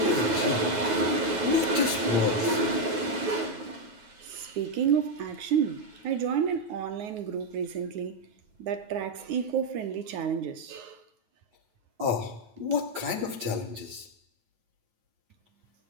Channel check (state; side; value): late; left; 9.3 ms